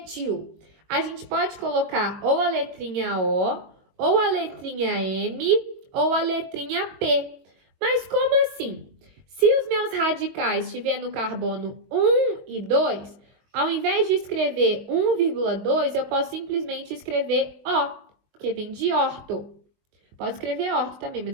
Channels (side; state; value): left; late; 22 ms